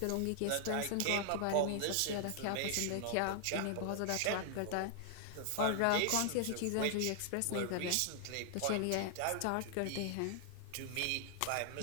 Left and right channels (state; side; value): different; both; correlation 0.00